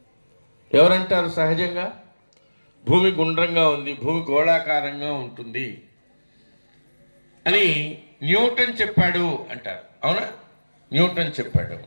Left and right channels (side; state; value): both; inverted; correlation -1.00